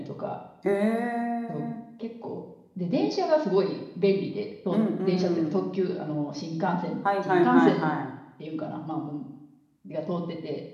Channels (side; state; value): both; identical; correlation 1.00